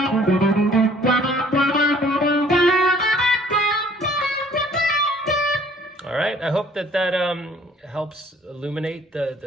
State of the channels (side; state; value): both; normal; correlation 0.56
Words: All right, I hope that helps illuminate